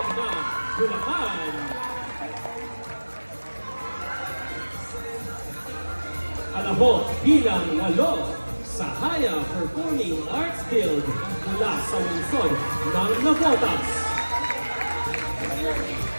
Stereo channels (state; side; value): inverted; both; correlation -1.00